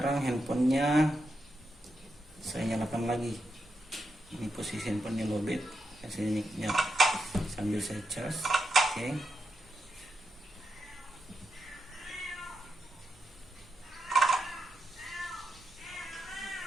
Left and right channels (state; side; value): normal; both; correlation 0.85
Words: handphonenya saya nyalakan lagi. Ini posisi handphonenya lowbat. Saya sambil saya cas. Oke.